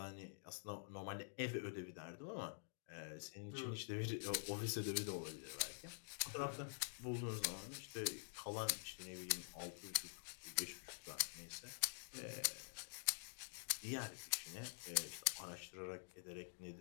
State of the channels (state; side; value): silent; right; digital silence